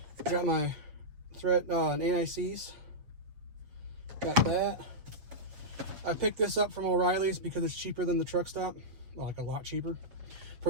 my thread anti-seize. Got that. I picked this up from O'Reilly's because it's cheaper than the truck stop. Well, like a lot cheaper.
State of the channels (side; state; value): left; late; 8.0 ms